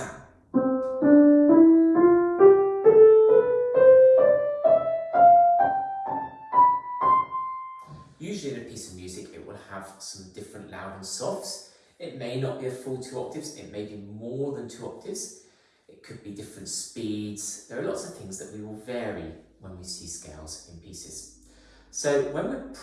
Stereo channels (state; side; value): identical; both; correlation 1.00